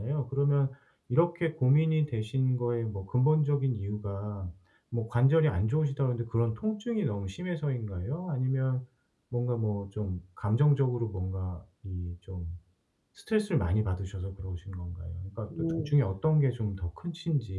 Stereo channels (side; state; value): both; identical; correlation 1.00